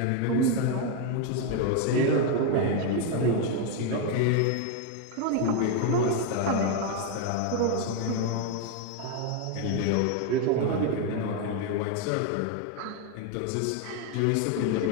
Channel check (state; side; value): different; both; correlation 0.02